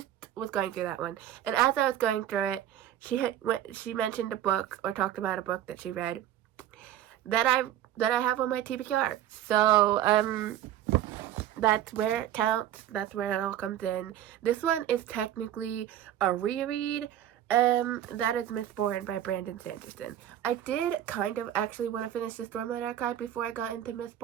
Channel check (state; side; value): quieter; left; 11.8 dB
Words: was going through that one. And as I was going through it, she mentioned a book, or talked about a book that she read that I have on my TBR. So, that's where it counts. That's where it all comes in. This one is technically a reread. That is Mistborn by Brandon Sanderson. I did kind of actually want to finish the Stormlight Archive before I got into